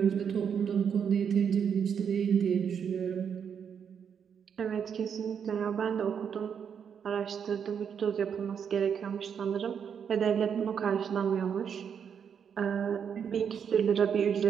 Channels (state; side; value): quieter; left; 7.5 dB